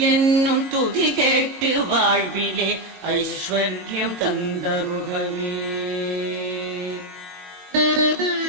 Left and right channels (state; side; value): late; left; 22 ms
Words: என்னும் துதி கேட்டு வாழ்விலே ஐஸ்வர்யம் தந்தருள்கவே.